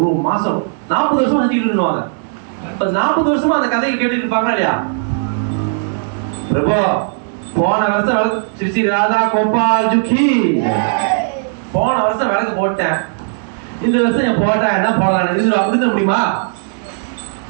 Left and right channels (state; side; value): silent; left; digital silence